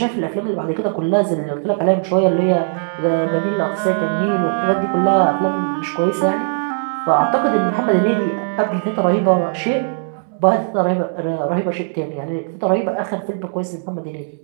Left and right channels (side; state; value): left; silent; digital silence